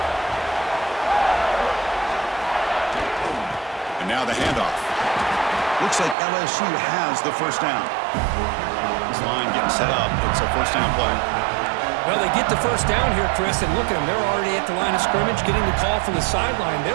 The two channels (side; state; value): left; drops out; at 6.2 s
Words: And now the handoff. Looks like LSU has the 1st down. This line getting set up. It's a 1st down play. Well, they get the 1st down here, Chris, and look at them. They're already at the line of scrimmage, getting the call from the sideline.